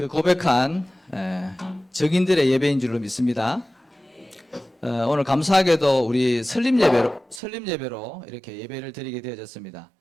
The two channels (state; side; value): drops out; left; at 7.4 s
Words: 고백한 증인들의 예배인 줄로 믿습니다. 오늘 감사하게도 우리 설립 예배로 이렇게 예배를 드리게 되어졌습니다.